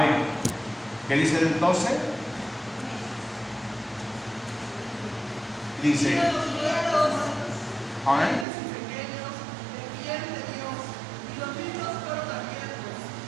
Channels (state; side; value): drops out; left; at 8.5 s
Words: ¿Qué dice el 12? Dice, amén.